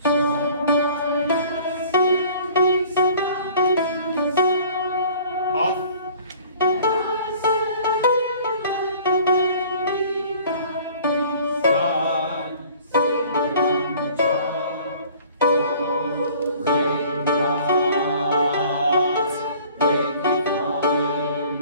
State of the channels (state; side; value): inverted; both; correlation -0.50